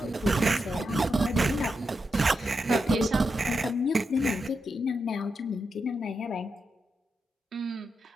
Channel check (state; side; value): normal; both; correlation 0.86